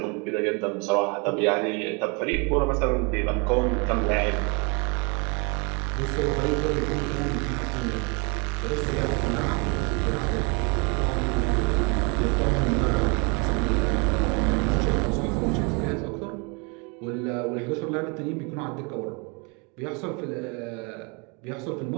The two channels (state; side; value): quieter; left; 32.2 dB